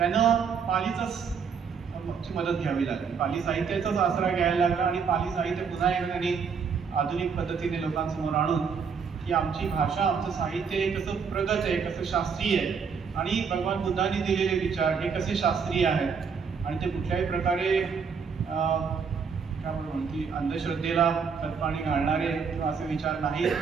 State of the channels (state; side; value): quieter; left; 6.1 dB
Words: पालीची मदत घ्यावी लागली, पाली साहित्याचाच आसरा घ्यायला लागला आणि पाली साहित्य पुन्हा एकदा त्यांनी आधुनिक पद्धतीने लोकांसमोर आणून की आमची भाषा, आमचं साहित्य हे कसं प्रगत आहे, कसं शास्त्रीय आहे आणि भगवान बुद्धांनी दिलेले विचार हे कसे शास्त्रीय आहेत आणि ते कुठल्याही प्रकारे काय म्हणून की अंधश्रद्धेला खतपाणी घालणारे किंवा असे विचार नाही,